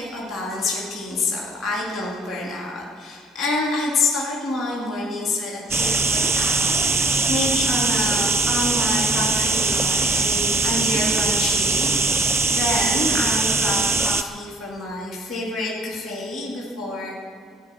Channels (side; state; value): both; normal; correlation 0.55